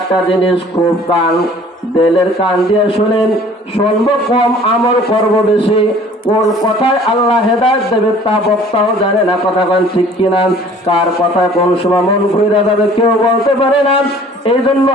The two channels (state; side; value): normal; both; correlation 0.51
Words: জিনিস। খুব দিলের কান দিয়ে শুনেন। শুনবো কম, আমল করব বেশি। কোন কথায় আল্লাহ হেদায়েত দেবে তা বক্তাও জানে না। কথা বলেন ঠিক কিনা? কার কথায় কোন সময় মন ঘুরে যাবে কেউ বলতে পারে না। এই জন্য